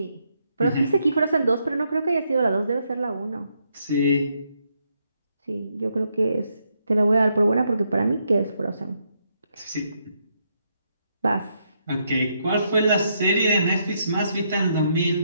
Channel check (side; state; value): both; inverted; correlation -0.77